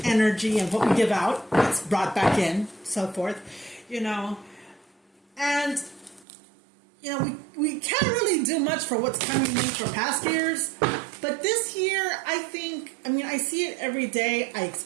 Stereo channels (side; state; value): left; drops out; at 6.2 s